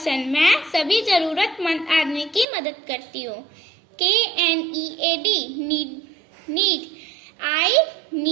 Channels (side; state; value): left; drops out; at 2.5 s